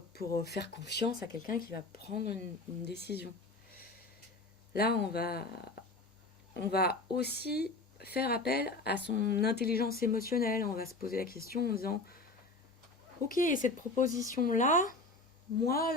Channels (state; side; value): quieter; right; 3.2 dB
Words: faire confiance à quelqu'un qui va prendre une décision. Là, on va aussi faire appel à son intelligence émotionnelle. On va se poser la question en disant ok, cette proposition-là, moi,